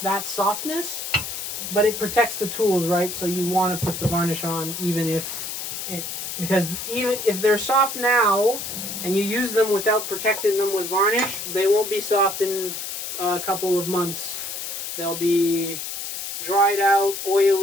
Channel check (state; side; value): noise; left; hiss, 6 dB below the sound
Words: softness, but it protects the tools, right? So you want to put the varnish on even if because even if they're soft now and you use them without protecting them with varnish, they won't be soft in a couple of months. They'll be dried out,